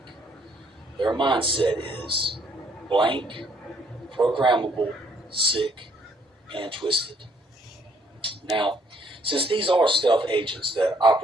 Their mindset is blank, programmable, sick, and twisted. Now, since these are stealth agents that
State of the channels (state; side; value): normal; both; correlation 0.67